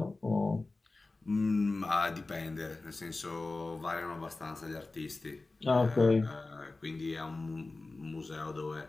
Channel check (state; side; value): quieter; right; 3.3 dB